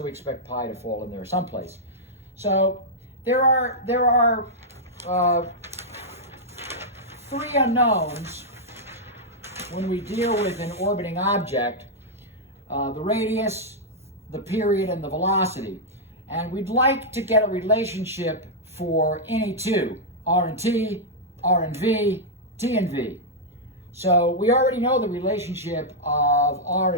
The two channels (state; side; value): normal; both; correlation -0.07